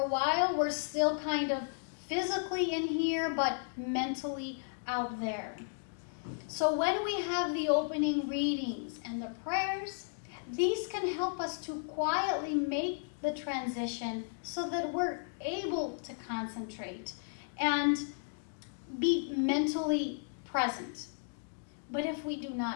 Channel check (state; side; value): silent; right; digital silence